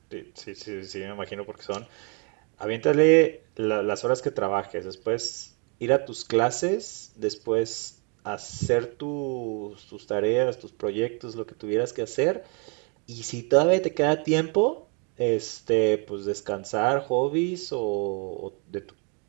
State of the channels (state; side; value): quieter; left; 36.1 dB